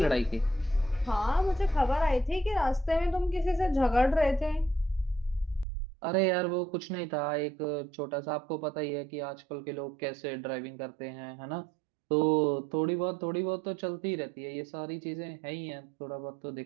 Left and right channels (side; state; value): left; drops out; at 5.7 s